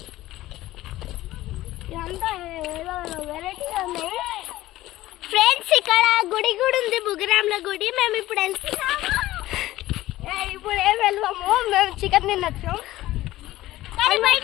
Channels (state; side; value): quieter; right; 16.1 dB